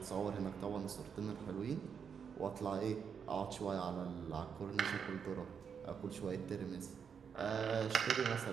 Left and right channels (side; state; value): left; quieter; 6.9 dB